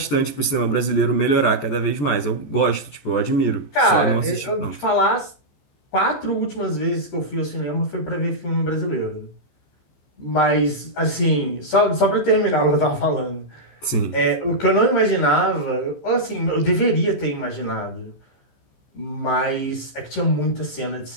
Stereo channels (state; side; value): late; right; 14 ms